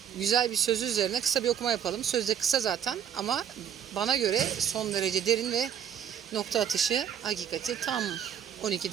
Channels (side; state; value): left; quieter; 9.0 dB